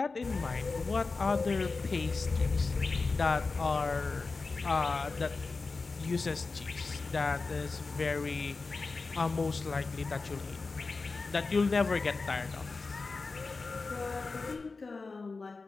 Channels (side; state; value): right; quieter; 4.0 dB